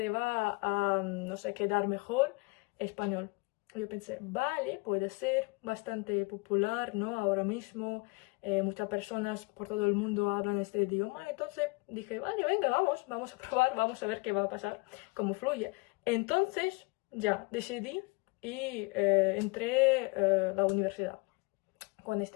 va a, no sé, quedar mejor español. Yo pensé, vale, puede ser bastante popular, ¿no? Ahora mismo muchas personas por todo el mundo hablan este idioma, entonces dije, vale, venga, vamos a probar, vamos a ver qué va a pasar, cómo fluye. Entonces, ya, decidí y entré a la universidad con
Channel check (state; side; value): quieter; right; 28.1 dB